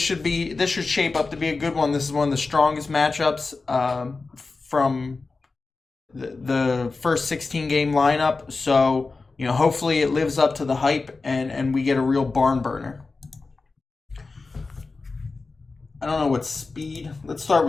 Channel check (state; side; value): quieter; right; 3.9 dB